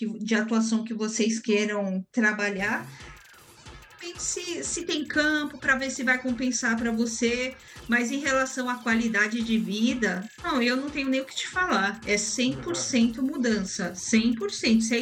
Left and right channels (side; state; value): both; identical; correlation 1.00